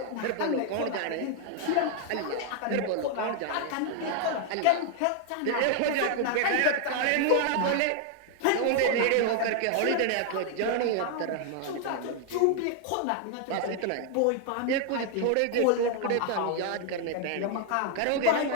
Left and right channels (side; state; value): both; different; correlation 0.00